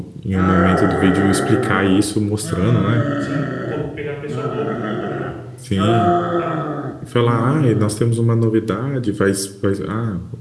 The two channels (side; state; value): both; identical; correlation 1.00